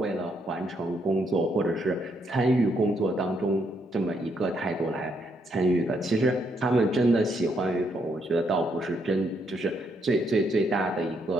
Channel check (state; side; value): normal; both; correlation 0.75